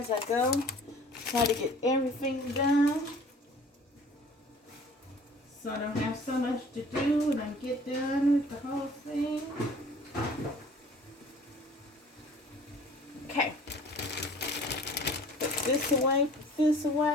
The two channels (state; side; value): normal; both; correlation 0.49